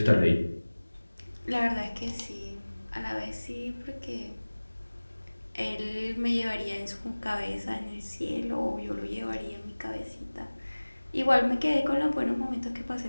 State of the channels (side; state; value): both; inverted; correlation -1.00